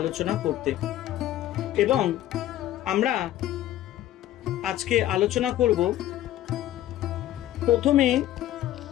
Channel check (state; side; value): quieter; right; 13.4 dB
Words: করতে। এবং আমরা আজকে আলোচনা করব, প্রথমে